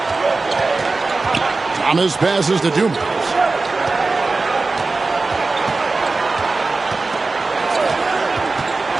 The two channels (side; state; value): left; quieter; 3.7 dB